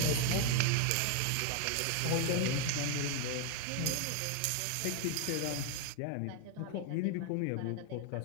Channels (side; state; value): both; different; correlation 0.01